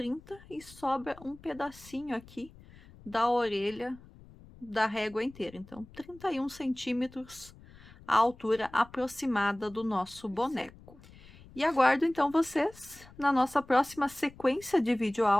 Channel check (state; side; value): noise; left; rumble, 22 dB below the sound